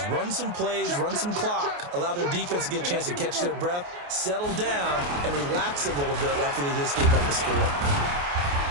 run some plays, run some clock, allow their defense to get a chance to catch their breath, settle down, and relax a little bit after they just gave up a score.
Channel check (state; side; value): late; left; 28 ms